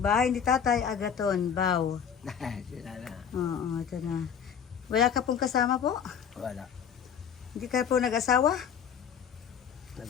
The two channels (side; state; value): right; quieter; 7.7 dB